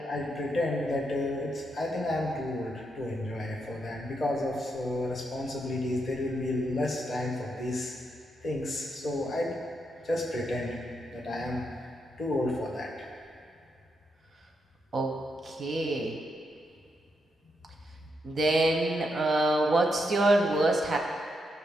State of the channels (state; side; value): normal; both; correlation 0.81